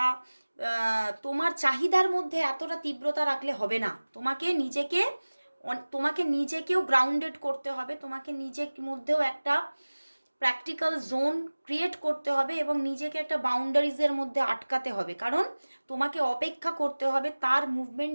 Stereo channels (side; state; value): both; inverted; correlation -1.00